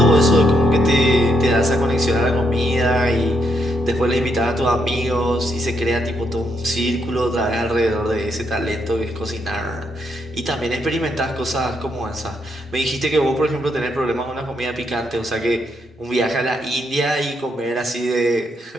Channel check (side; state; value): both; normal; correlation 0.77